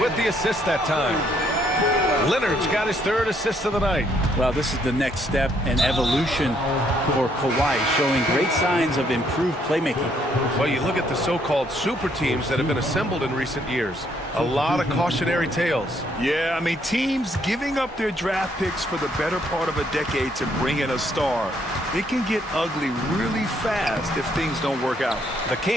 with the assist that time. Leonard's got his 3rd assist of the night. Well, this is the next step in evolution for Kawhi, showing great signs of improved playmaking. Well, you look at the so-called super teams that have been assembled in recent years. A lot of cautionary tales. Yeah, I mean, teams giving up their draft picks for the better part of a decade to bring in a star. It can get ugly really fast if things don't work out. The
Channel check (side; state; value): both; normal; correlation 0.70